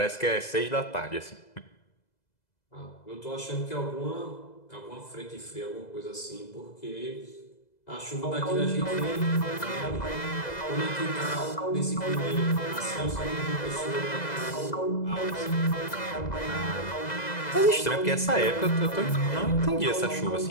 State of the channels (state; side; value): late; right; 2.0 ms